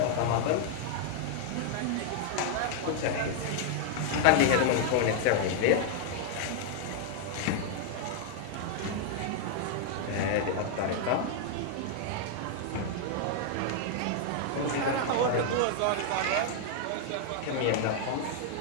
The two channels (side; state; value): both; different; correlation 0.00